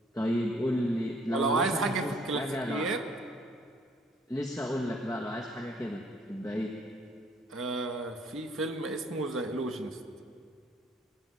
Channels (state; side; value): normal; both; correlation 0.61